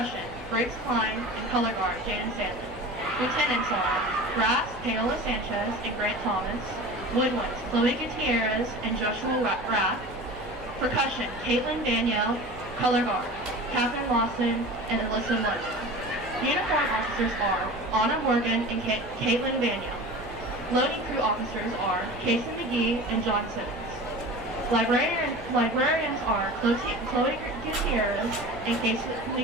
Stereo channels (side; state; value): left; noise; hum, 19 dB below the sound